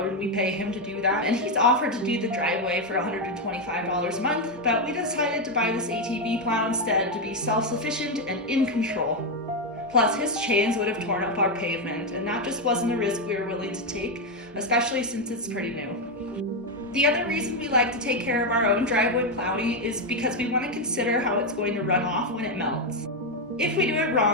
and we pay him to do that. And he's offered to do the driveway for $125 a month, but we decided to buy this ATV plow instead to be self-sufficient and in control. Plus, his chains would have torn up our pavement, and that just wasn't a risk we were willing to take, especially since it's pretty new. The other reason we like to take care of our own driveway plowing is because we want to consider how it's going to run off when it melts. If we do it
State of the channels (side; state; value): both; normal; correlation 0.05